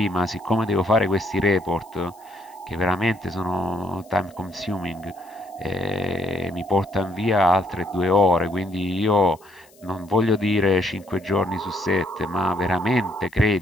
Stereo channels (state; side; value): noise; left; hiss, 29 dB below the sound